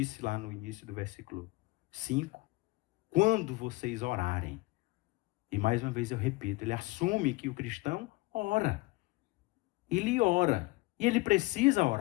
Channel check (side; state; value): right; quieter; 22.5 dB